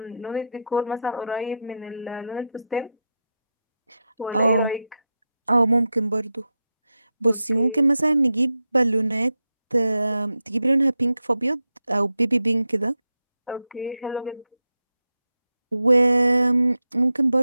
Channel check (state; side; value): inverted; both; correlation -0.87